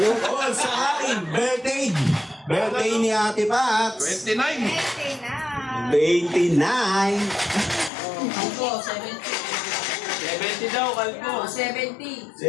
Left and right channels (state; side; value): drops out; right; at 7.9 s